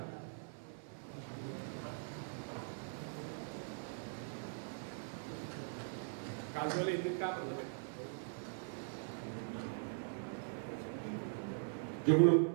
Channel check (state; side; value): silent; left; 50 dB below the other